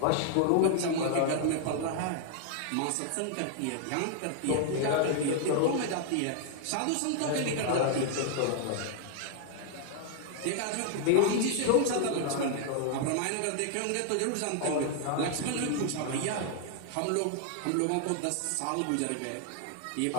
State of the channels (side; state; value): both; different; correlation 0.00